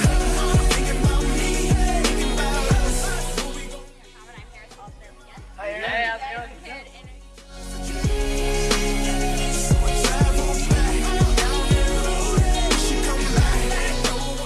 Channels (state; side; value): identical; both; correlation 1.00